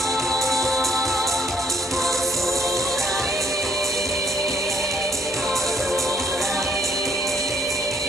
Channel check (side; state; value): both; normal; correlation 0.67